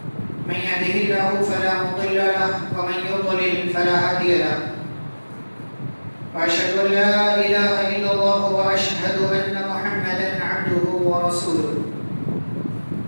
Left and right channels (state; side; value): inverted; both; correlation -1.00